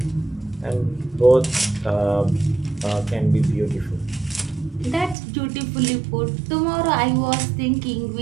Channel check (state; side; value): drops out; left; at 5.2 s